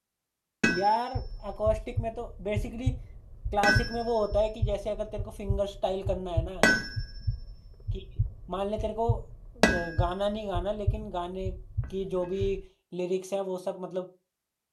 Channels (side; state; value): both; identical; correlation 1.00